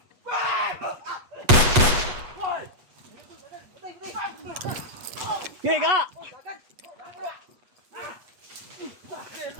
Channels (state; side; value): late; left; 8.3 ms